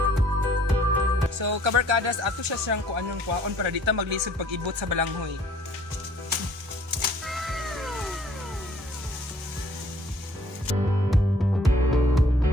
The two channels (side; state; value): both; normal; correlation 0.58